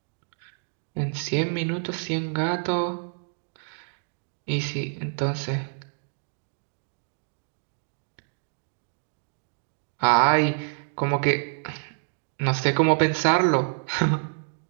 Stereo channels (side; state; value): left; silent; 59 dB below the other